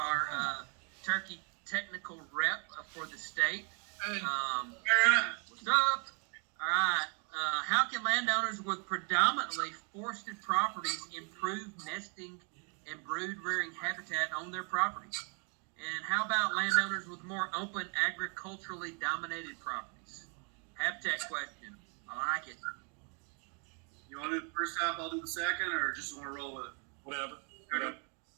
turkey technical rep for the state. Hey, What's up? All right. How can landowners with predominantly forested properties improve nesting and brood rearing habitat on their properties? And how about landowners with more open agriculturally dominated properties? Habitat question. I like it. you want to do the first half? I'll do the second, or just want to roll with it? Whatever.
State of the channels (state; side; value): quieter; left; 37.7 dB